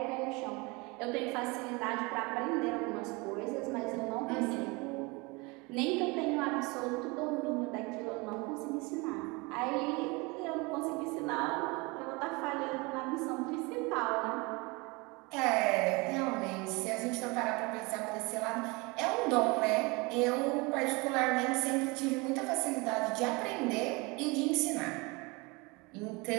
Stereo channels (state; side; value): quieter; left; 26.5 dB